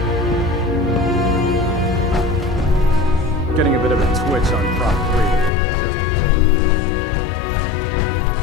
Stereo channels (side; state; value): right; drops out; at 5.5 s